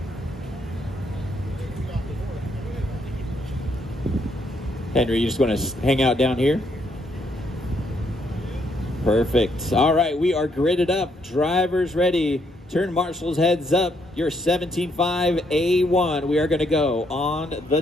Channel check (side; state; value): both; normal; correlation 0.73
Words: Henry, you just want to hang out down here? Perfect. All right, we are gridded up. Drivers ready. Turn marshals heads up. Your 17.5 A1. We are going to go on the